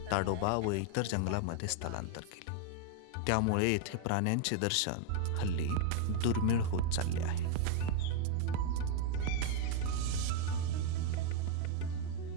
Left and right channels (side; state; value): both; different; correlation 0.00